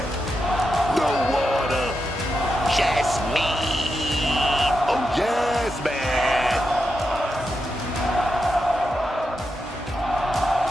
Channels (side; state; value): both; normal; correlation 0.87